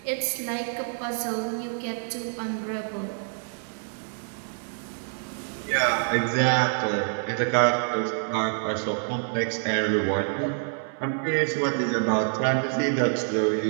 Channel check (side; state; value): left; silent; 60 dB below the other